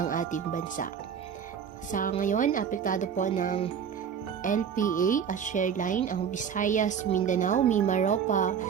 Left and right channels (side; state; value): left; quieter; 7.6 dB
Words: ating bansa. Sa ngayon, apektado po ng LPA at shoreline ang Visayas, Mindanao, Mimaropa,